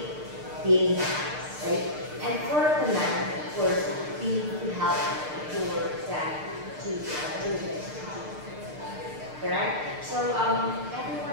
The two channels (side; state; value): left; late; 6.6 ms